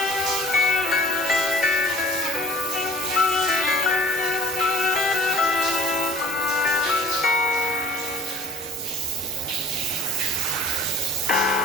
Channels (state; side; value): normal; both; correlation 0.47